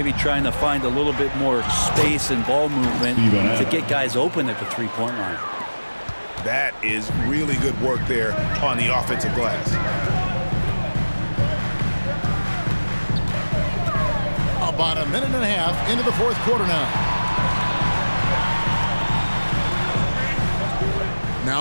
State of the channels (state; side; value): inverted; both; correlation -1.00